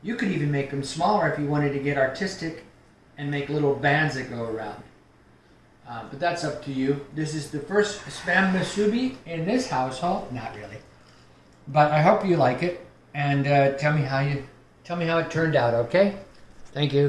You could even make them smaller if you wanted to get artistic and make little bands that go around. But that's up to you. This is the first Spam masubi in this household. Not really. But I hope you like it, and tell me how it turned out, okay? Thank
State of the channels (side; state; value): both; identical; correlation 1.00